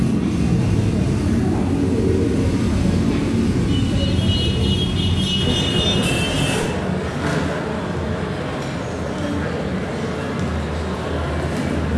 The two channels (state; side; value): identical; both; correlation 1.00